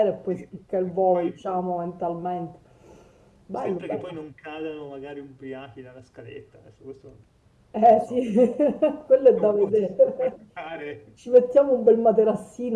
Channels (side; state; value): both; identical; correlation 1.00